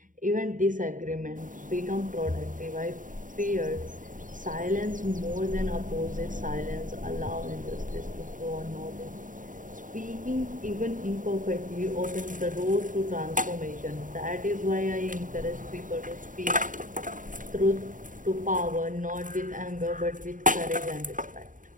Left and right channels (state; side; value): late; left; 0.38 ms